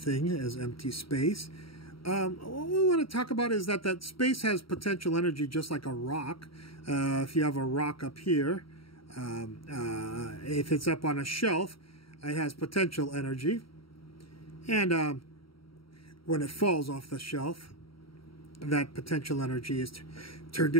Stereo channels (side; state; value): right; late; 0.75 ms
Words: as empty space. What we want to talk about is that space has potential energy just like a rock. If you have a rock up here, if it's up on a shelf, it has potential energy. And when it falls off the shelf, that potential energy is turned